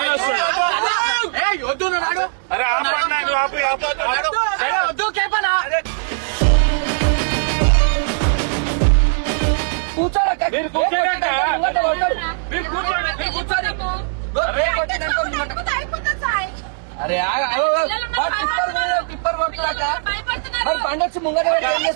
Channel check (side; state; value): left; silent; digital silence